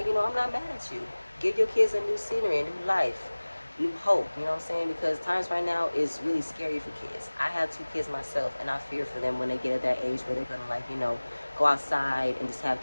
I'm not mad at you. Give your kids a new scenery, a new life, new hope, you know what I'm saying? Because times right now is really scary for kids. I have two kids myself, and I fear for them when they get at that age where they're gonna go outside and just have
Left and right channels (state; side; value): inverted; both; correlation -1.00